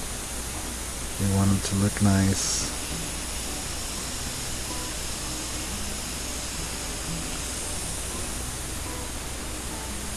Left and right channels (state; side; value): identical; both; correlation 1.00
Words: we want them to look nice.